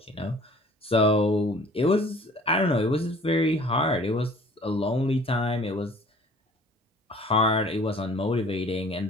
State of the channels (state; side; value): normal; both; correlation 0.51